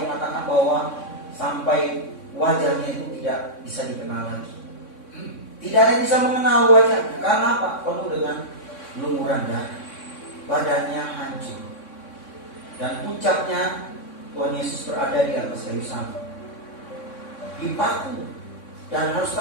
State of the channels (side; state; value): right; late; 3.6 ms